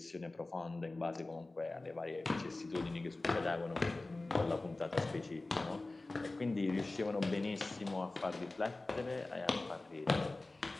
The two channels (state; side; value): quieter; right; 3.0 dB